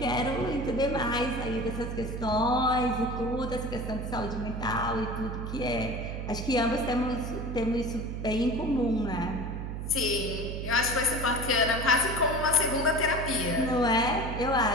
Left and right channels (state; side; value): noise; right; hum, 5 dB below the sound